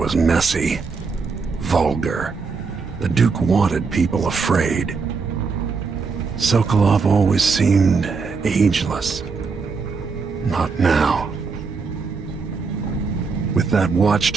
messy, vulgar. The Duke wanted people afraid. Sokolov always seemed ageless. Not now. With that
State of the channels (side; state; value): left; quieter; 4.8 dB